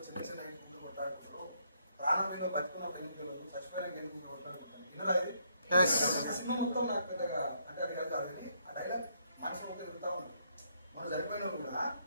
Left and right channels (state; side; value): inverted; both; correlation -0.72